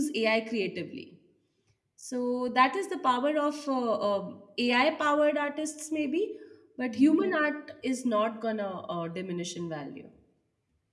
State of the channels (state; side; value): identical; both; correlation 1.00